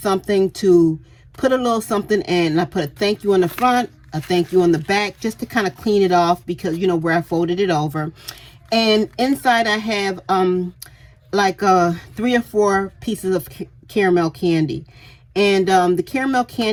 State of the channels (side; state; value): both; identical; correlation 1.00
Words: to put a little something in. And I put a thank you on the front, a thank you on the back, just to kind of clean it off, because, you know, where I folded it over. And inside I have like 3 or 4 pieces of caramel candy. And the caramel